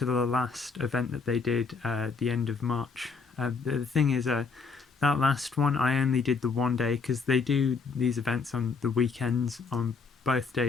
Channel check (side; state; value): right; quieter; 4.9 dB